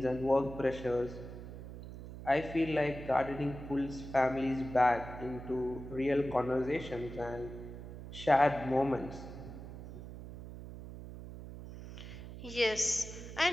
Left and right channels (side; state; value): right; noise; hum, 12 dB below the sound